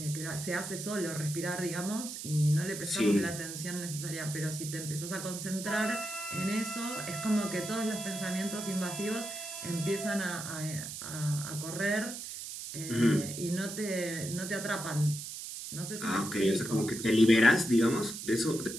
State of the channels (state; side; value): noise; right; hiss, 8 dB below the sound